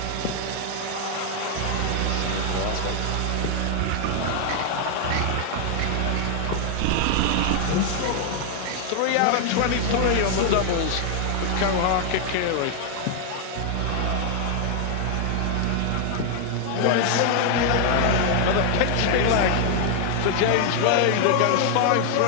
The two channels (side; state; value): both; different; correlation 0.00